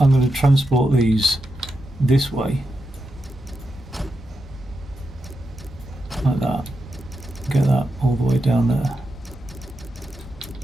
to transport these this way, like that, get that all the way down there.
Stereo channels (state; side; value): normal; both; correlation 0.87